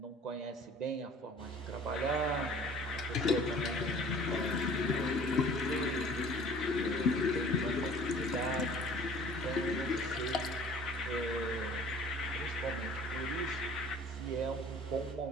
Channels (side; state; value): both; normal; correlation 0.49